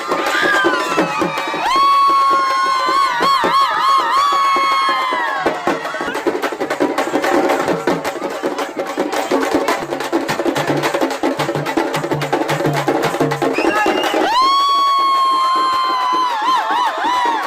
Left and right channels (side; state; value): both; identical; correlation 1.00